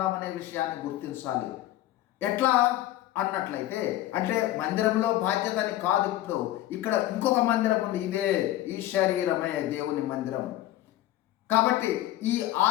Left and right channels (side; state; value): right; quieter; 14.6 dB